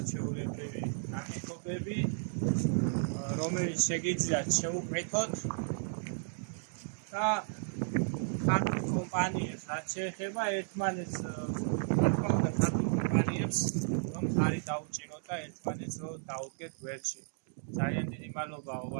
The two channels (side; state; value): left; silent; digital silence